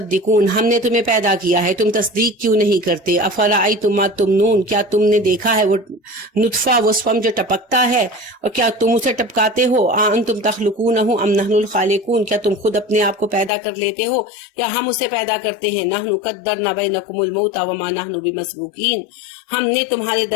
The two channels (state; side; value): drops out; right; at 13.5 s